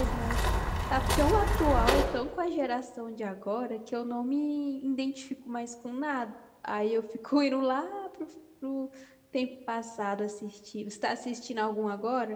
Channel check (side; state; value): both; identical; correlation 1.00